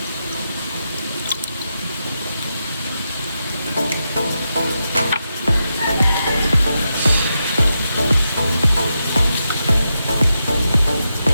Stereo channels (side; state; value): both; inverted; correlation -0.86